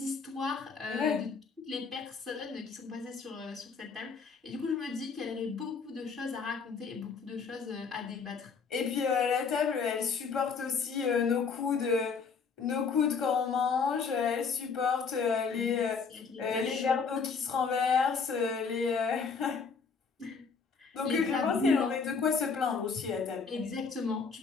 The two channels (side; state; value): right; quieter; 5.3 dB